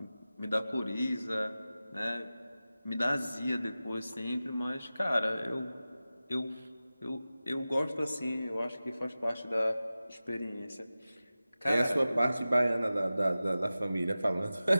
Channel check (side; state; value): both; inverted; correlation -0.96